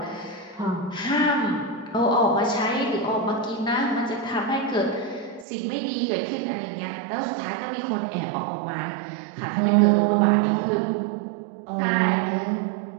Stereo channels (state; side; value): drops out; left; at 5.5 s